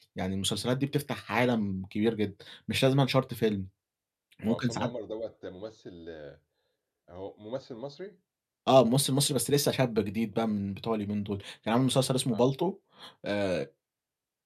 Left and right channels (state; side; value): identical; both; correlation 1.00